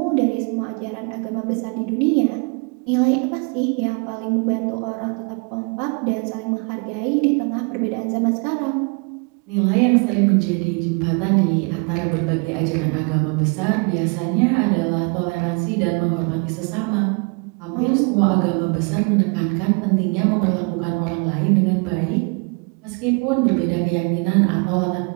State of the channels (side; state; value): left; quieter; 32.8 dB